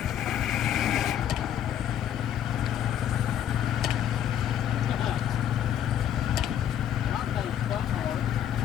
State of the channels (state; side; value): quieter; right; 10.2 dB